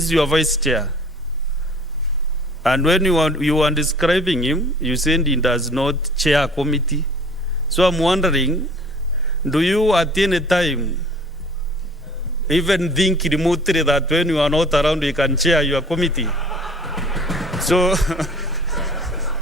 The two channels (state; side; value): normal; both; correlation 0.50